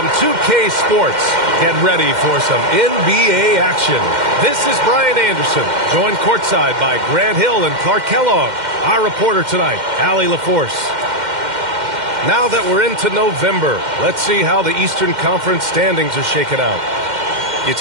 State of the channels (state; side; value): late; left; 2.1 ms